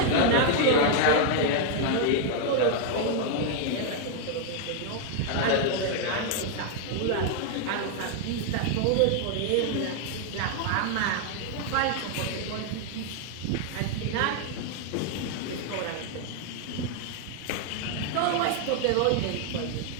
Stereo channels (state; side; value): different; both; correlation 0.00